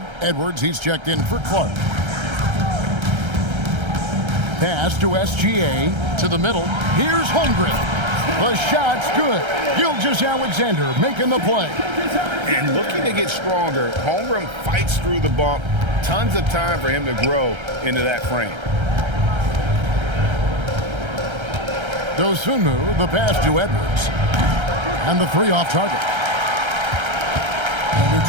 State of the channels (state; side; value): late; left; 1.3 ms